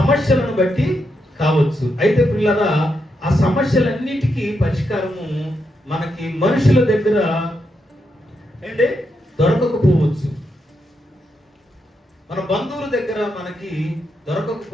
బట్టి కావచ్చు. అయితే పిల్లరా, ఆ సమస్యలన్నిటికీ పరిష్కారము మనకి మనుషుల దగ్గర అంటే దొరకకపోవచ్చు, మన బంధువుల దగ్గర మనకి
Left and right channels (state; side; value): normal; both; correlation 0.83